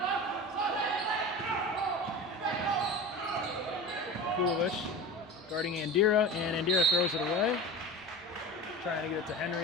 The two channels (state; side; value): normal; both; correlation 0.31